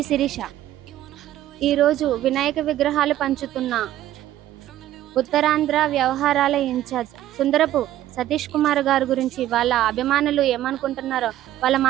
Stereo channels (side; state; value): left; quieter; 13.3 dB